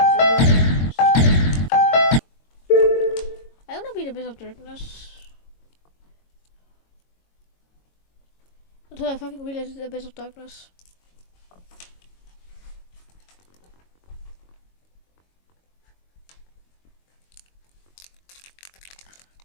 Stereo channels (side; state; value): right; late; 22 ms